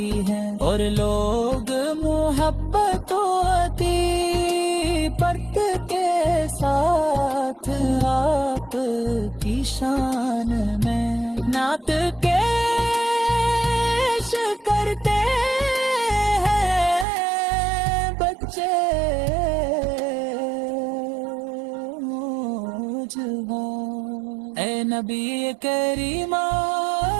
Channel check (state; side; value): drops out; left; at 17.1 s